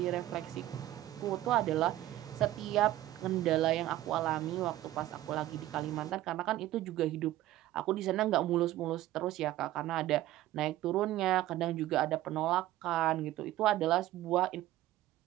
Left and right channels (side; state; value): left; quieter; 14.8 dB